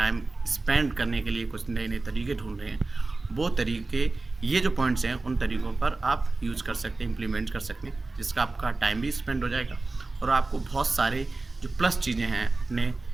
स्पेंड करने के लिए कुछ नए नए तरीके ढूंढ रहे हैं, वो तरीके, ये जो पॉइंट्स हैं, उन तरीक़ों पर आप यूज़ कर सकते हैं, इम्प्लीमेंट कर सकते हैं, जिसका आपका टाइम भी स्पेंड हो जाएगा और आपको बहुत सारे जो प्लस चीज़ें हैं अपने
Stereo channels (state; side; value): quieter; left; 3.4 dB